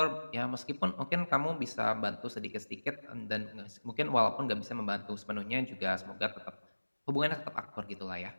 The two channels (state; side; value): inverted; both; correlation -1.00